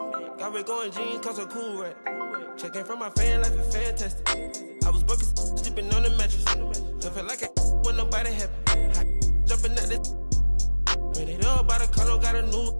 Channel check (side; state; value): both; inverted; correlation -1.00